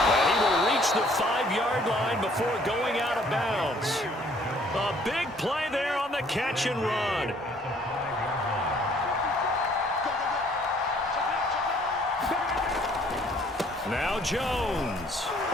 he will reach the 5-yard line before going out of bounds. A big play there on the catch and run. Now Jones.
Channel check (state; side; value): normal; both; correlation 0.60